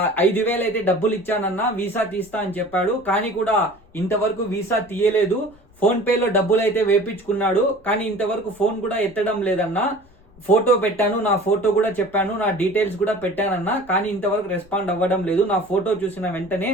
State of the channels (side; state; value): left; noise; rumble, 28 dB below the sound